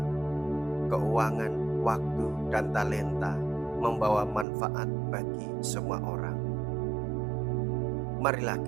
keuangan, waktu, dan talenta membawa manfaat bagi semua orang. Marilah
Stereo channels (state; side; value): drops out; left; at 4.5 s